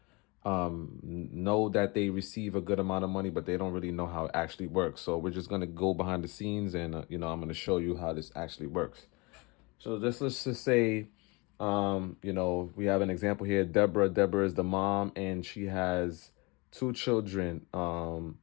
know that they receive a good amount of money, but they don't really know how it actually works. So we're just going to go behind the scenes and, I'm going to show you how this actually works. So let's just say, we have an example here. Deborah is the mom, and she has two children,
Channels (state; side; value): quieter; right; 27.1 dB